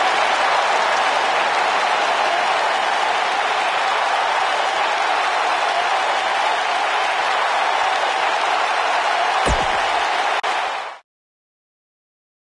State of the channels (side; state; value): both; identical; correlation 1.00